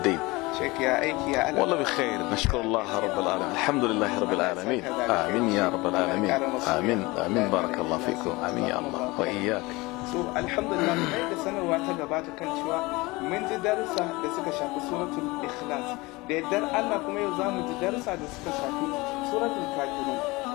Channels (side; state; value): right; quieter; 22.8 dB